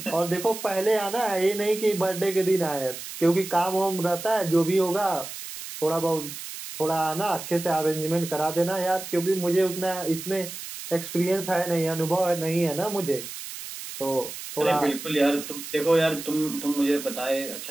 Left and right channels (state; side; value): noise; right; hiss, 10 dB below the sound